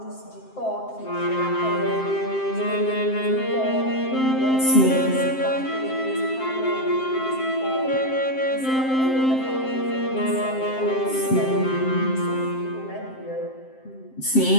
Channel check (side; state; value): right; late; 7.6 ms